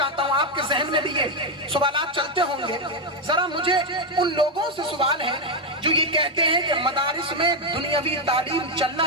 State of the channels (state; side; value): normal; both; correlation 0.04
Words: ہوں، آپ کے ذہن میں بھی یہ سوالات چلتے ہوں گے. ذرا مجھے ان لوگوں سے سوال ہے جو یہ کہتے ہیں کہ مدارس میں دنیاوی تعلیم